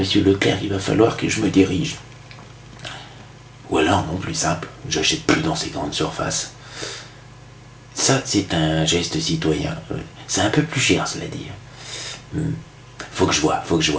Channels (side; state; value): both; identical; correlation 1.00